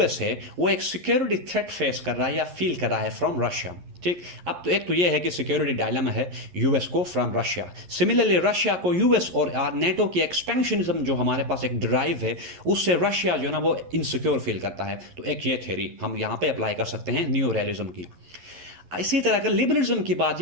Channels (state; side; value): late; left; 11 ms